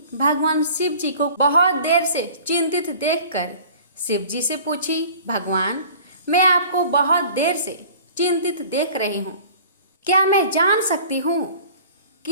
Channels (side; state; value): both; inverted; correlation -0.46